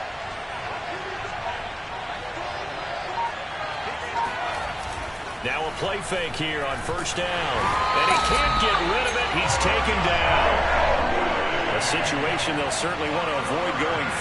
Now a play fake here on first down. And he can't get rid of it. He's taken down. A situation they'll certainly want to avoid going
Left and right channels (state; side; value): identical; both; correlation 1.00